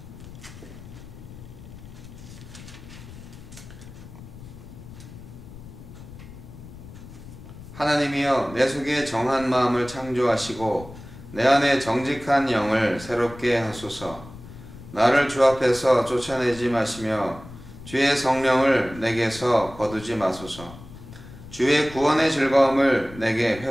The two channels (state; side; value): noise; left; rumble, 16 dB below the sound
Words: 하나님이여, 내 속에 정한 마음을 창조하시고 내 안에 정직한 영을 새롭게 하소서. 나를 주 앞에서 쫓아내지 마시며 주의 성령을 내게서 거두지 마소서. 주의 구원의 즐거움을 내게